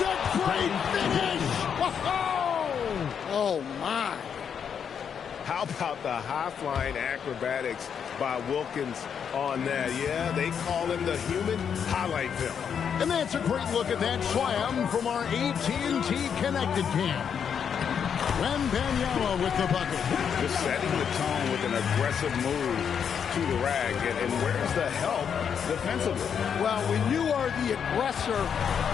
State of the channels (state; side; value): quieter; right; 7.5 dB